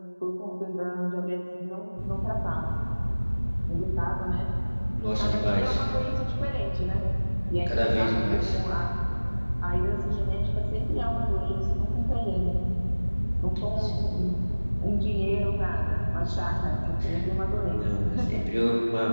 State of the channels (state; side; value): inverted; both; correlation -1.00